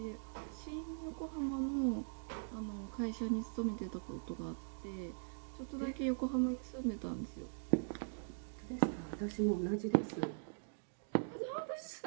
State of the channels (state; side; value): silent; left; digital silence